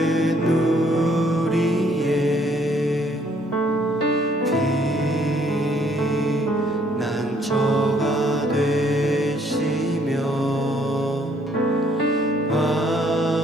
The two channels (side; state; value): both; normal; correlation 0.65